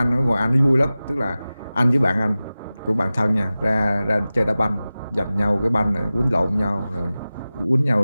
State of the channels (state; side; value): inverted; both; correlation -0.96